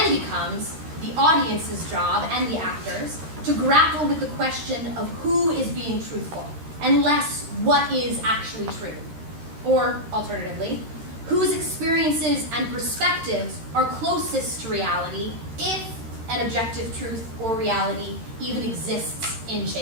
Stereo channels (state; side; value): late; left; 13 ms